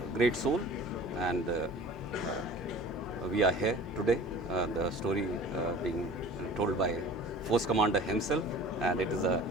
great soul, and we are here today, the story being told by Force Commander himself, and it is a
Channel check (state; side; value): normal; both; correlation 0.43